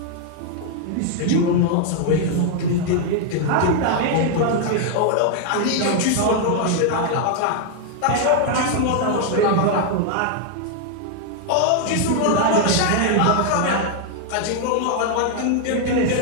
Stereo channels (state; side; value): different; both; correlation 0.00